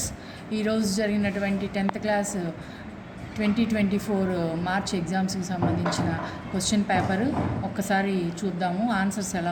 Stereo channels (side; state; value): both; identical; correlation 1.00